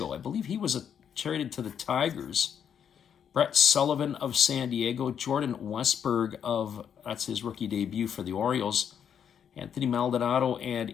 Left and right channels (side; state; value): right; quieter; 8.2 dB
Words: I believe he was traded to the Tigers. Brett Sullivan of San Diego. Jordan Westberg that's his rookie debut for the Orioles. Anthony Maldonado